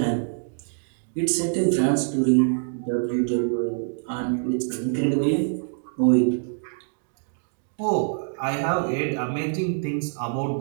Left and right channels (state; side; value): silent; left; digital silence